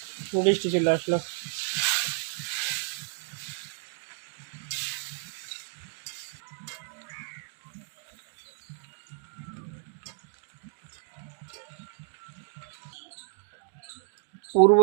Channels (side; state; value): left; silent; digital silence